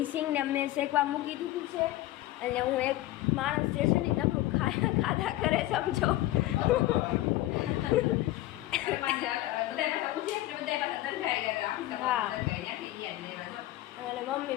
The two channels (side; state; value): right; quieter; 16.1 dB